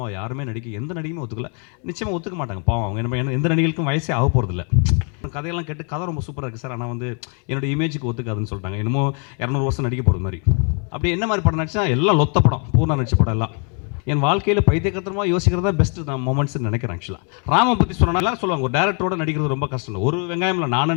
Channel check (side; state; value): right; quieter; 38.6 dB